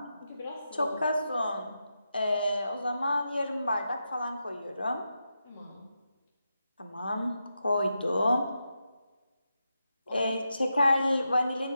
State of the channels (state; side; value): inverted; both; correlation -0.87